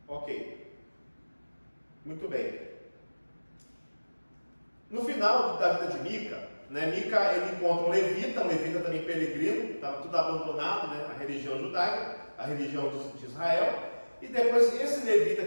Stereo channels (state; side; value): inverted; both; correlation -1.00